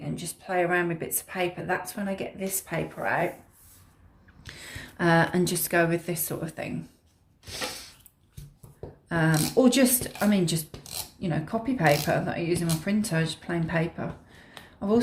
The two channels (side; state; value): both; identical; correlation 1.00